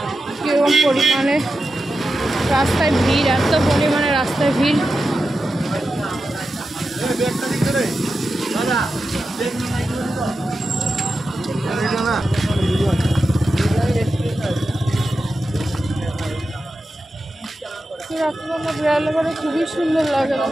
কিরকম পরিমাণে, রাস্তায় ভিড়, এত পরিমাণে রাস্তায় ভিড়। রাত্রিবেলা বেড়ালে পরে খুবই সুন্দর লাগে,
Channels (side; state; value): both; normal; correlation 0.91